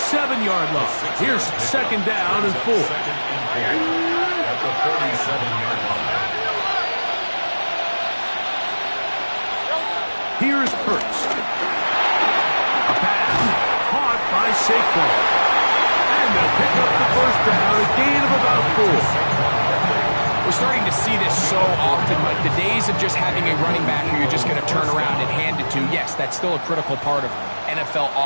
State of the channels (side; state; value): both; inverted; correlation -1.00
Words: line. Here's second down and 4. At the 47-yard line. Here's Hurts. A pass caught by Saquon. And they'll pick up the first down, a gain of about 4. We're starting to see this so often, Mike. The days of just having a running back who you're just going to turn around and hand it to, yes, that's still a critical part of NFL